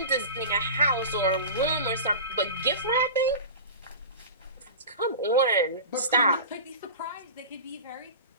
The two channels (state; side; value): inverted; both; correlation -0.32